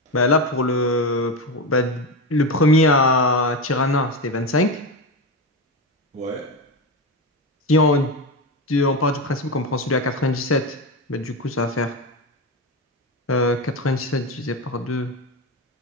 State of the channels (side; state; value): both; normal; correlation 0.17